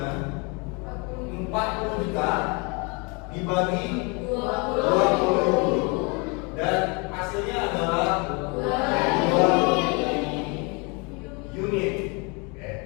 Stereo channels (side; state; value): right; quieter; 31.1 dB